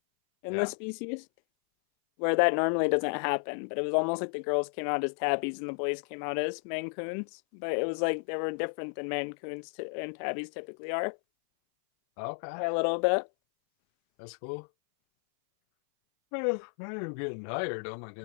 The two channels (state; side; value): silent; right; 57 dB below the other